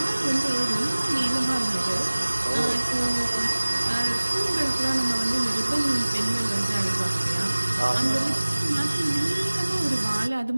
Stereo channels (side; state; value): both; inverted; correlation -1.00